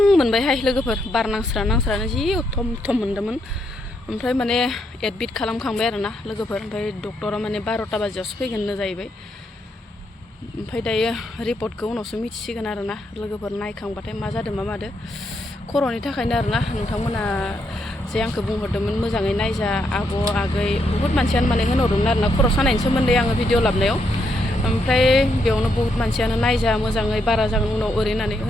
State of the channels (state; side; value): normal; both; correlation 0.78